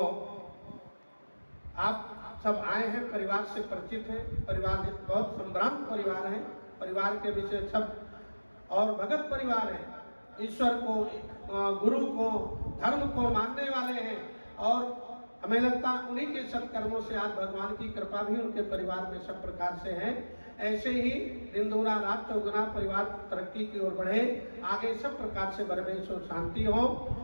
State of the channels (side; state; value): both; inverted; correlation -1.00